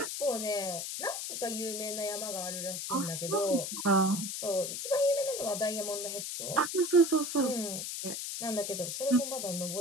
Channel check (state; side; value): noise; left; hiss, 4 dB below the sound